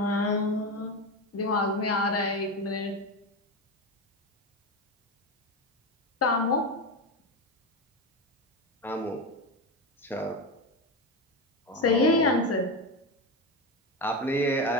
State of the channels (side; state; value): both; normal; correlation 0.17